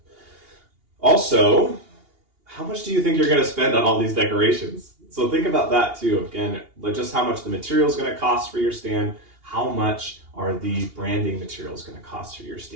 Also, how much do you think you're going to spend on all these decorations? So think about that, too. Again, like just how much the material is going to cost for your stand. How much are the branding materials going to cost for your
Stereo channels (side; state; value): left; late; 2.8 ms